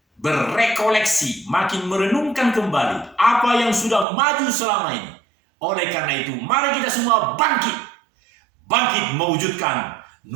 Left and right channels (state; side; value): drops out; left; at 4.0 s